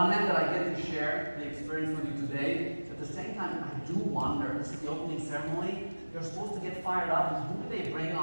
hand, that I get to share the experience with you today. At the same time, I do wonder, this is the opening ceremony, you're supposed to get fired up, and who do they bring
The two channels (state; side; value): inverted; both; correlation -1.00